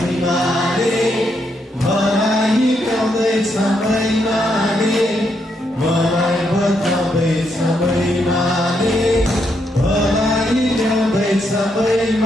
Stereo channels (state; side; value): normal; both; correlation 0.78